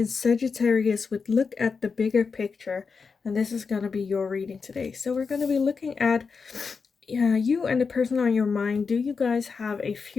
Sagittarius with look at the bigger picture, and this is going to be your reading today. So we're going to be looking at you and the person on your mind. Do you guys have a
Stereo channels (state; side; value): quieter; right; 5.2 dB